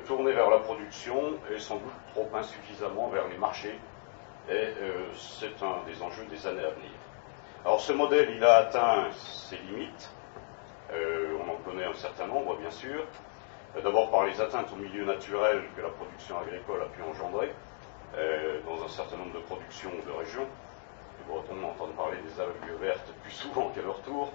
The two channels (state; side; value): silent; right; 55 dB below the other